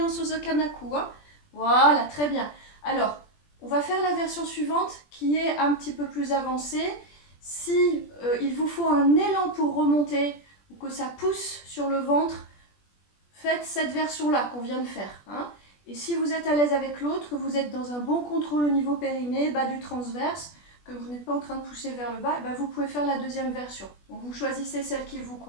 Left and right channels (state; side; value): late; right; 20 ms